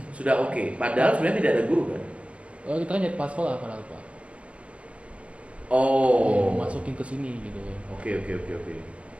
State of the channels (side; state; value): left; late; 0.062 ms